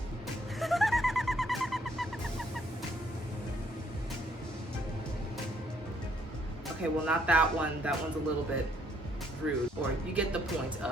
Okay, well, not that one. That one's a little bit rude, or you get the point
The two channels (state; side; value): normal; both; correlation 0.68